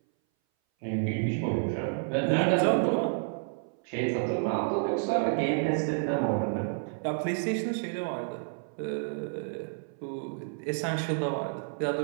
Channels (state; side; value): silent; left; 58 dB below the other